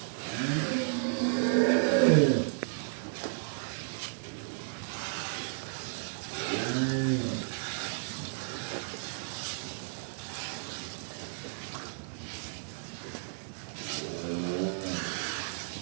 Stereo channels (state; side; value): silent; left; digital silence